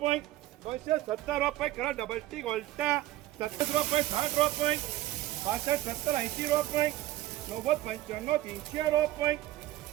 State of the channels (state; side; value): quieter; left; 15.4 dB